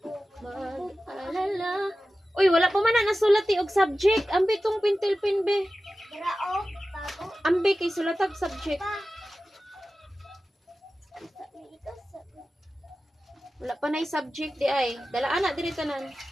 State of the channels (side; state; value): both; normal; correlation 0.95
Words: mag-alala? Uy, wala pa man na nasulat og subject. Ambi tong pintil-pin be. Grao, bago. Ambi kay sulatag subject. Wala pa na subject di ay. Dalaan na diri tanan.